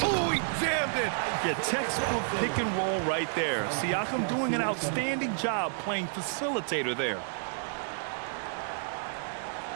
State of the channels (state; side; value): silent; left; digital silence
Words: Oh, he jammed it. Yeah, textbook pick and roll right there. Siakam doing an outstanding job playing facilitator there.